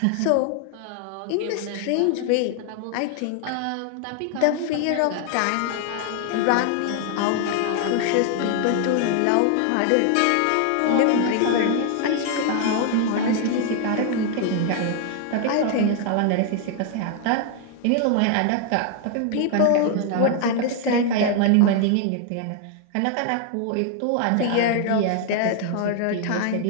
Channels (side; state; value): both; different; correlation 0.00